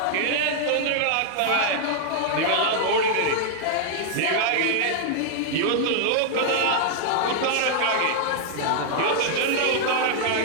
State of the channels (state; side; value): different; both; correlation -0.01